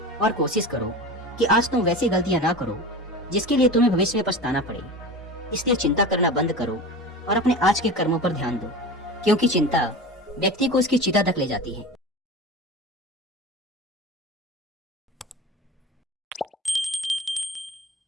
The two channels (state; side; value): normal; both; correlation 0.31